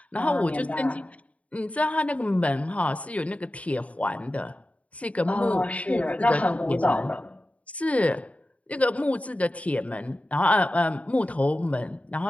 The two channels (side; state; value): right; late; 0.067 ms